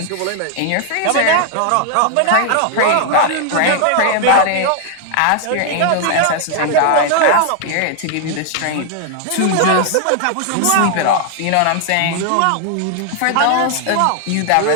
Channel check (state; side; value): different; both; correlation 0.00